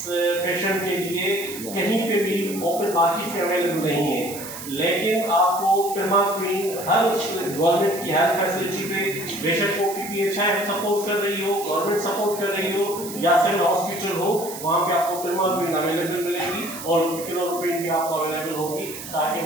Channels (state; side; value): noise; right; hiss, 11 dB below the sound